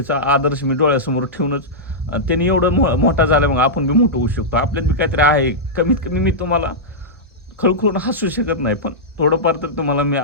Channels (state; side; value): normal; both; correlation -0.11